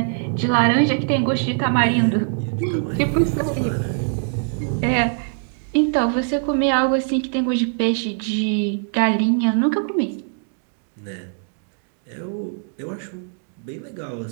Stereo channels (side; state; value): left; silent; 64 dB below the other